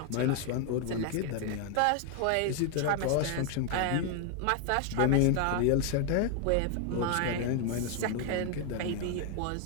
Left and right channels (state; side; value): different; both; correlation 0.01